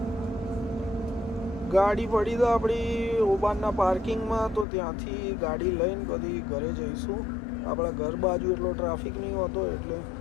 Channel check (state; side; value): drops out; right; at 4.7 s